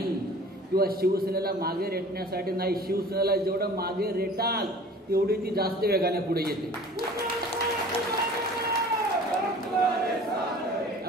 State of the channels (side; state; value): both; normal; correlation 0.45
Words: किंवा शिवसेनेला मागे रेटण्यासाठी नाही. शिवसेनेला जेवढं मागे रेटाल तेवढी ती जास्त वेगाने पुढे येते.